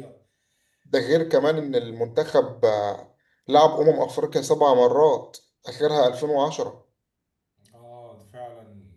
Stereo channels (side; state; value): both; identical; correlation 1.00